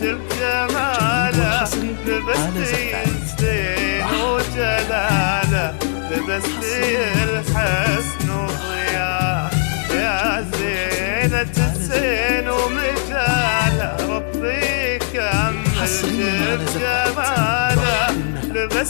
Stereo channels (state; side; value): silent; right; digital silence